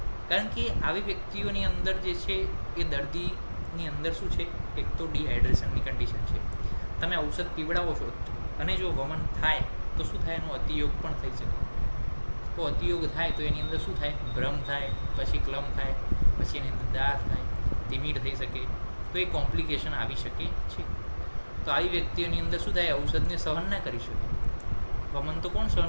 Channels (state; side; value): inverted; both; correlation -1.00